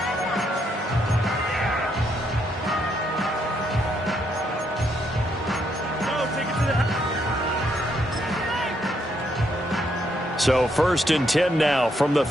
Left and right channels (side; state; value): both; normal; correlation 0.75